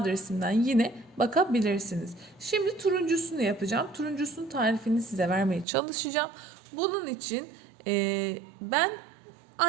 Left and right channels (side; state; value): left; drops out; at 5.7 s